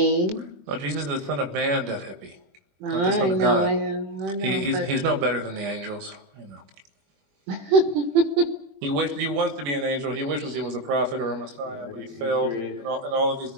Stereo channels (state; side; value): late; left; 21 ms